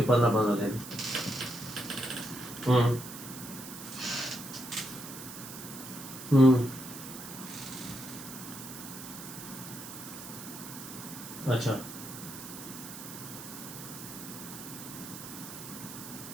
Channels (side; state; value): right; noise; hiss, 11 dB below the sound